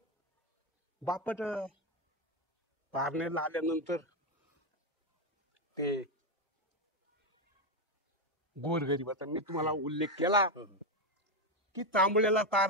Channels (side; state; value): both; normal; correlation 0.07